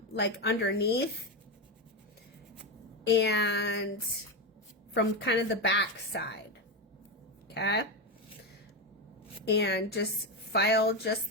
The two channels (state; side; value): normal; both; correlation 0.12